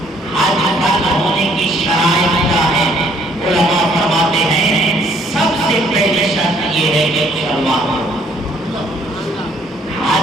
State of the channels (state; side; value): normal; both; correlation 0.63